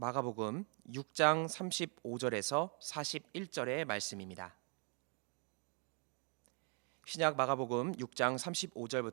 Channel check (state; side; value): quieter; left; 38.8 dB